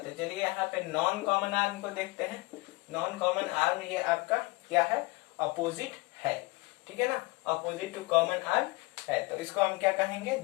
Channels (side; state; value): right; quieter; 24.7 dB